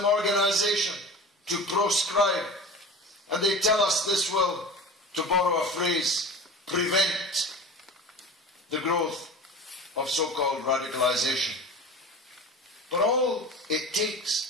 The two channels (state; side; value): normal; both; correlation 0.35